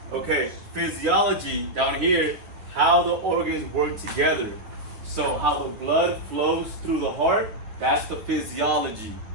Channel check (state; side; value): late; left; 9.8 ms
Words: Okay, physiology down here, how the organs work together. So how the blood flows through the heart, that's the physiology.